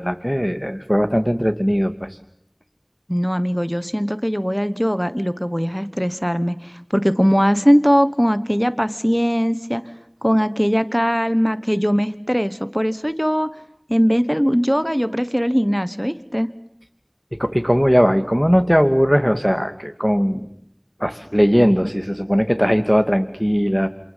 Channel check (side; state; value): both; identical; correlation 1.00